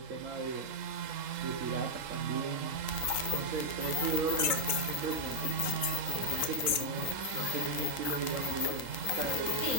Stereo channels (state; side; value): late; left; 3.8 ms